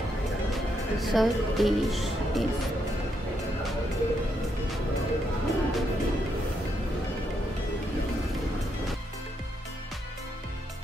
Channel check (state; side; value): normal; both; correlation 0.78